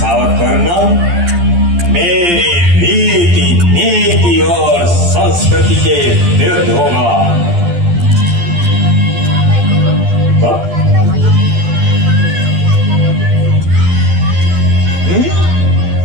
करना मेरी रीति नीति और संस्कृति के विरुद्ध होगा।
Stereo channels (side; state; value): left; late; 12 ms